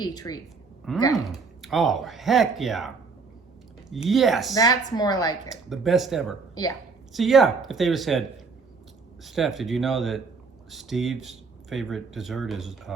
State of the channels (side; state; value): left; quieter; 4.6 dB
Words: treat. Okay. Oh, heck yeah. Yes. That's more like it. The best ever. Yeah. See, yeah, if they would have said, Steph, did you know that Steve's favorite dessert is